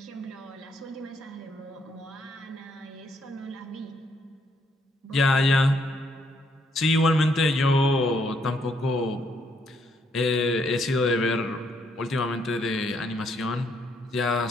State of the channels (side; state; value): both; normal; correlation 0.72